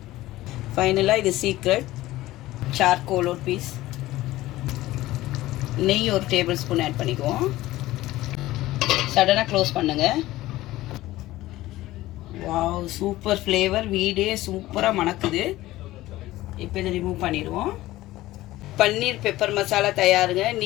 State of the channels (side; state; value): right; quieter; 16.8 dB